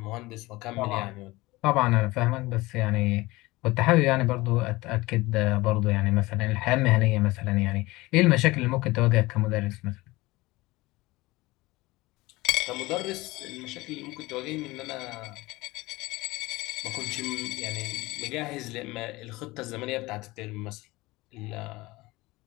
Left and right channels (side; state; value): right; quieter; 20.8 dB